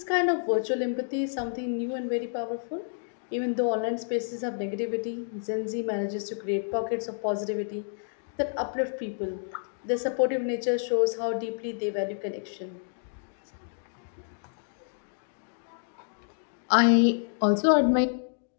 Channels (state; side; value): silent; right; digital silence